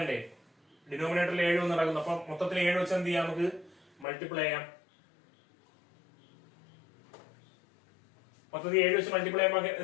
ഡിനോമിനേറ്ററിൽ 7 എന്ന് നടക്കുന്നു. അപ്പൊ മൊത്തത്തിൽ 7 വെച്ച് എന്ത് ചെയ്യാം? നമുക്ക് മൾട്ടിപ്ലൈ ചെയ്യാം. മൊത്തത്തിൽ 7 വെച്ച് മൾട്ടിപ്ലൈ ചെയ്യുമ്പോൾ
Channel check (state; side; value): drops out; right; at 4.0 s